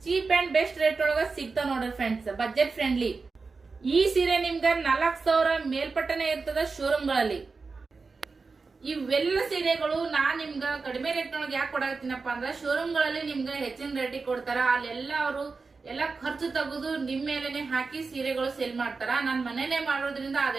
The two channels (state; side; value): quieter; left; 4.4 dB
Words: ಚೀಪ್ ಅಂಡ್ ಬೆಸ್ಟ್ ರೇಟ್ ಒಳಗ ಸಿಗ್ತಾವ ನೋಡ್ರಿ ಫ್ರೆಂಡ್ಸ್, ಬಜೆಟ್ ಫ್ರೆಂಡ್ಲಿ. ಈ ಸೀರೆ ನಿಮ್ಗ 4,000 ಮೇಲ್ಪಟ್ಟನೆ ಇರ್ತದ ಶೋರೂಮ್ ಗಳಲ್ಲಿ. ಇವೆಲ್ಲ ಸೀರೆಗಳು ನಾನ್ ನಿಮ್ಗ ಕಡಿಮೆ ರೇಟ್ ಒಳಗೆ ಯಾಕೆ ಕೊಡಾಕತ್ತೀನಪ್ಪ ಅಂದ್ರ, ಶೋರೂಮ್ ಗಳಲ್ಲಿ ನಿಮ್ಗ ಹೆಚ್ಚಿನ ರೇಟಿಗೆ ಕೊಡ್ತಾರ. ಅಲ್ಲೆಲ್ಲ ಅವರು ಎಲ್ಲ ಖರ್ಚು ತೆಗೆದು ನಿಮ್ ಮೇಲೆನೆ ಹಾಕಿ ಸೀರೆಗಳು ಸೇಲ್ ಮಾಡ್ತಾರ. ನಾನ್ ಮನೇನೆ ಮಾಡೋದ್ರಿಂದ